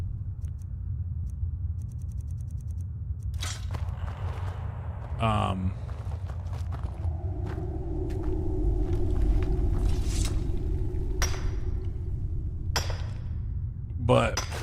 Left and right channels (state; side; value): identical; both; correlation 1.00